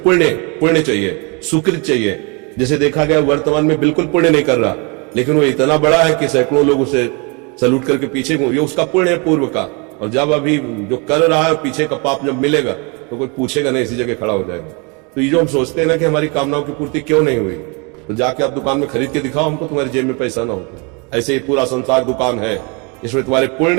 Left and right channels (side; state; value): left; quieter; 31.6 dB